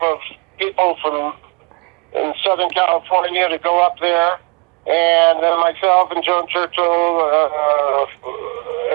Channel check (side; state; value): left; quieter; 32.6 dB